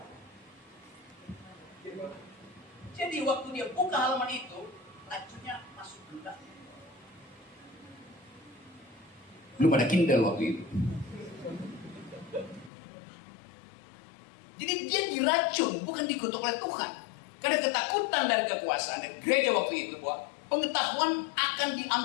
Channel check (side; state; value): right; drops out; at 12.7 s